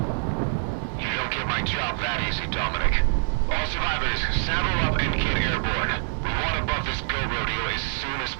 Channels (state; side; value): silent; left; digital silence